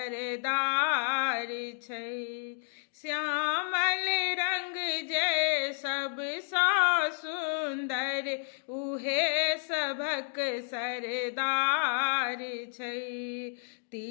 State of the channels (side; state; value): right; silent; digital silence